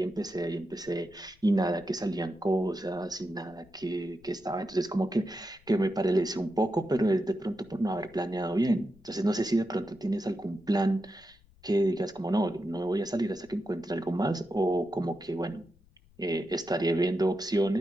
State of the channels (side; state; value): left; noise; rumble, 28 dB below the sound